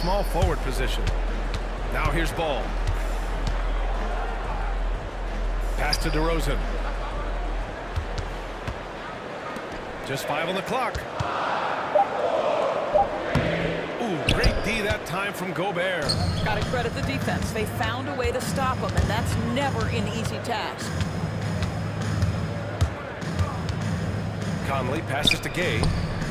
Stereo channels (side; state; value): both; identical; correlation 1.00